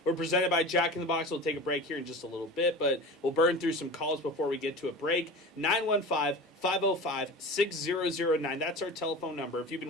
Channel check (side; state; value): both; normal; correlation 0.34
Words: We're presented by Jack in the Box. We'll take a break here in just a little bit, but we'll burn through some calls before we get to a break. 915-505-6009. That's our telephone number. If you've